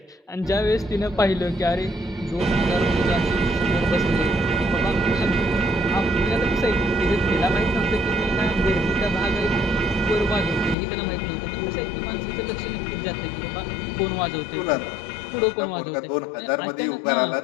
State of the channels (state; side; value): drops out; right; at 10.8 s